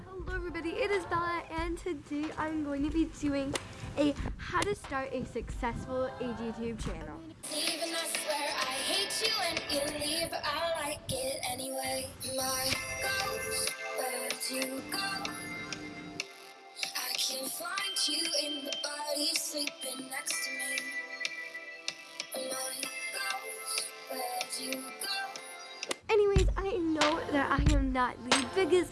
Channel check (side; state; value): both; identical; correlation 1.00